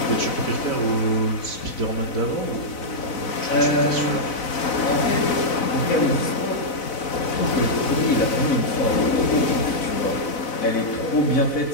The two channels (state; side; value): late; right; 4.0 ms